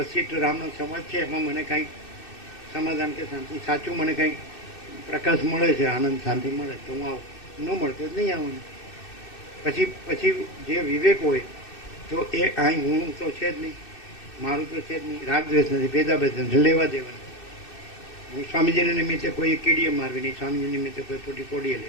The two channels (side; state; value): right; late; 2.6 ms